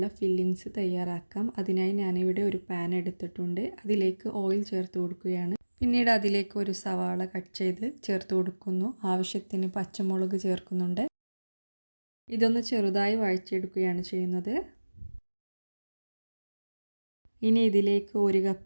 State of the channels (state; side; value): inverted; both; correlation -1.00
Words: ഫില്ലിങ്സ് തയ്യാറാക്കാം. അതിനായി ഞാനിവിടെ ഒരു പാൻ എടുത്തിട്ടുണ്ട്. അതിലേക്ക് ഓയിൽ ചേർത്ത് കൊടുക്കുകയാണ്. പിന്നീട് അതിലേക്ക് ഒരു സവാള കട്ട് ചെയ്ത് ചേർത്ത് കൊടുക്കുന്നു. ആവശ്യത്തിന് പച്ചമുളക് ചേർക്കുന്നുണ്ട്. ഇതൊന്ന് ചെറുതായി വഴറ്റിയെടുക്കുകയാണ് ചെയ്യുന്നത്. ഇനി ഇതിലേക്ക് 1